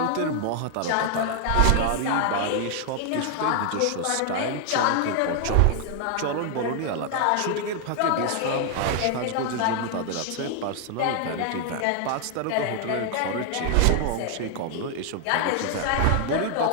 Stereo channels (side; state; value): both; different; correlation 0.00